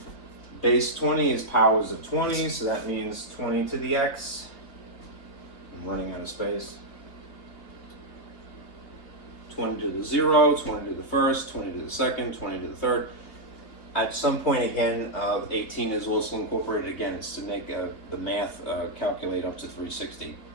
Base 20 is powers of 20, so that means 20 to the x. I'm running out of space. 20 to the 0, 20 to the first, 20 to the second, 20 to the third. At some point again, 18 is also incorporated again. It's to make the math calculate up to 360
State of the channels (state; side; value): late; right; 2.8 ms